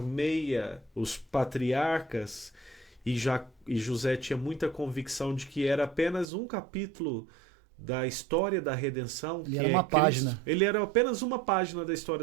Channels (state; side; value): drops out; left; at 6.2 s